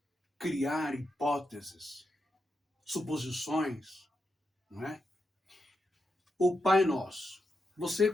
criar hipóteses, suposições, não é? O Pai Nosso. Você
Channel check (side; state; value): both; normal; correlation 0.85